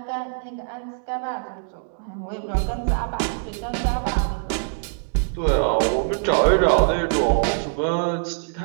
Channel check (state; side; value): silent; left; digital silence